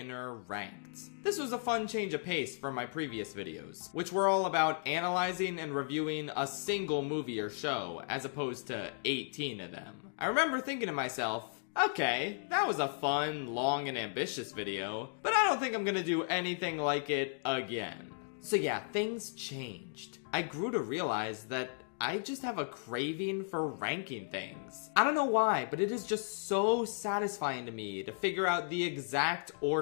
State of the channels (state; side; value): silent; right; digital silence